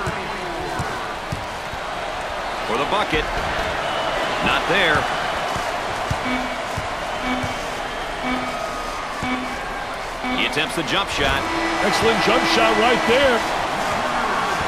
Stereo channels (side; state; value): both; identical; correlation 1.00